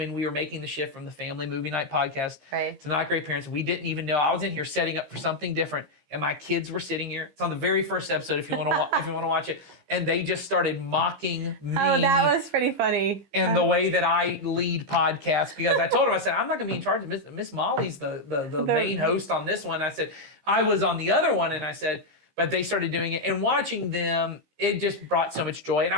we were making the shift from the Family Movie Night podcast Right. to Not Great Parents. We didn't even know. I was in here setting up for something different, and my kids were sitting here. It's on the very first episode if you want to if you want to watch it. And they just started mocking me. Oh, that was pretty funny. and the way that I lead podcasts, because I told them, I said, I'm not going to be in charge of Miss Molly's the main host on this one. I said, I was on the other one, and I said, but they started doing it, and watching them, it just brought so much joy, and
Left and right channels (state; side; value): late; left; 15 ms